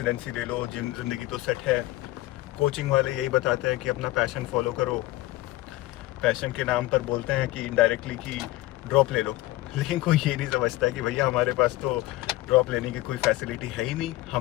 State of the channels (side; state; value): right; quieter; 17.8 dB